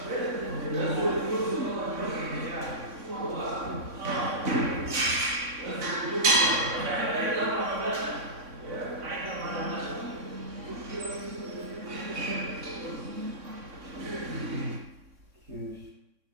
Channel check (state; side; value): late; left; 3.6 ms